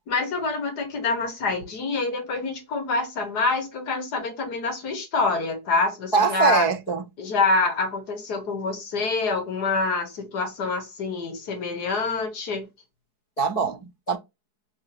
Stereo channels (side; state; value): right; late; 4.6 ms